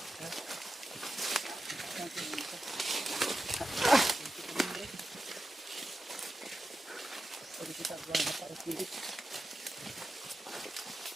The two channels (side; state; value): both; normal; correlation 0.91